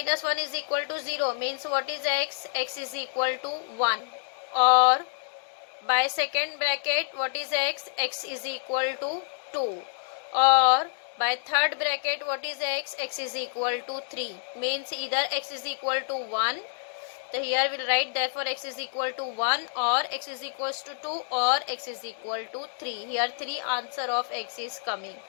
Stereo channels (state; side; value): silent; right; digital silence